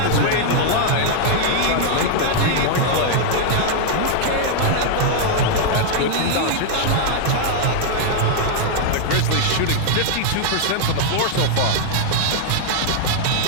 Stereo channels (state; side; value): different; both; correlation -0.01